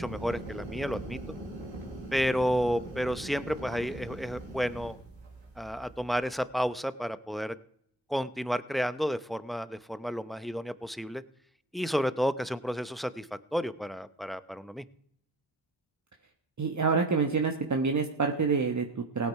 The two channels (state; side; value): normal; both; correlation 0.59